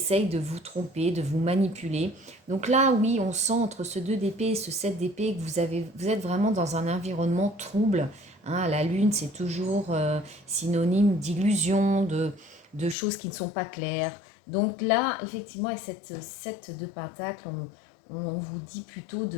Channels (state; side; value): drops out; right; at 13.0 s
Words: de vous tromper, de vous manipuler. Donc là oui, on sent entre ce 2 d'épée et ce 7 d'épée que vous êtes vraiment dans un environnement trouble. Hein, la lune c'est toujours synonyme d'illusion, de choses qui ne sont pas claires. Donc là effectivement avec cette 7 de pentacle, on vous dit plutôt